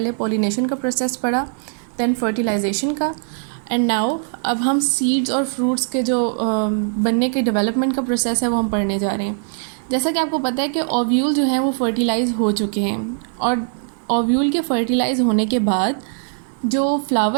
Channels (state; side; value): silent; left; 65 dB below the other